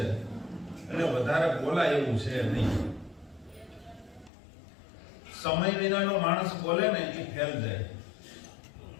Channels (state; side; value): drops out; right; at 4.3 s